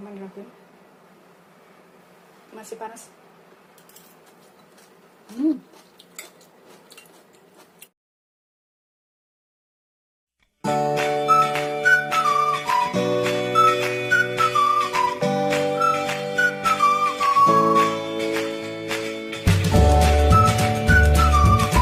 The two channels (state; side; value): identical; both; correlation 1.00